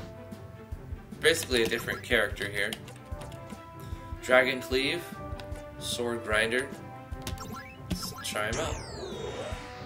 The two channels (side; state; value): both; identical; correlation 1.00